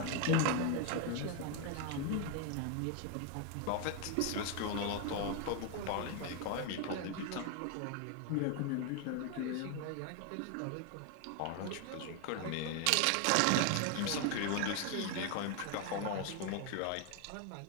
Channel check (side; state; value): both; different; correlation 0.01